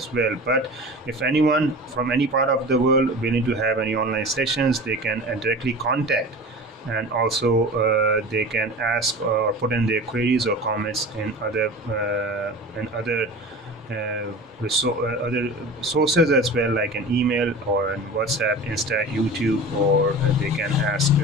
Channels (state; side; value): normal; both; correlation 0.35